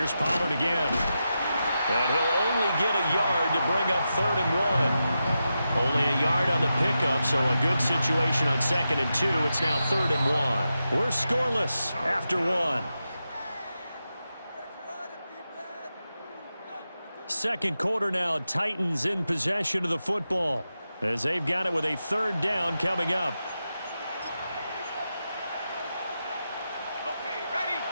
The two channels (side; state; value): both; inverted; correlation -0.89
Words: Pollard again. And he'll only get a yard to bring up 3rd and 1. Only a yard on the pickup, so a good situation on 2nd and 2. It's now 3rd and 1. We're scoreless after 1. Second quarter now, Titans in possession of the football as they've got it with a 3rd down coming up.